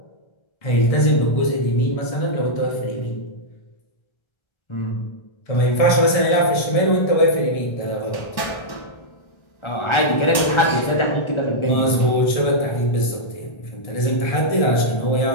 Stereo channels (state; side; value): late; right; 1.3 ms